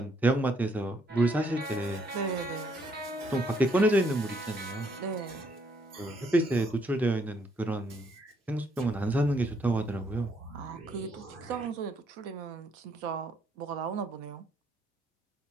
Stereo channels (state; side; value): normal; both; correlation 0.70